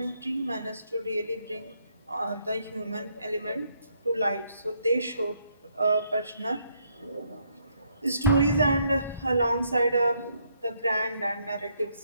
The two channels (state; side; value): inverted; both; correlation -0.73